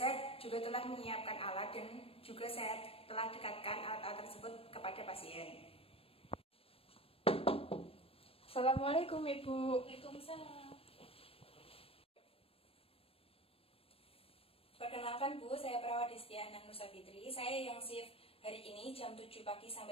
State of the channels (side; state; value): right; late; 0.28 ms